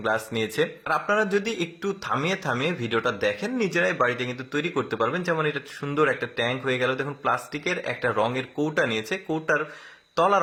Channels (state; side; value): identical; both; correlation 1.00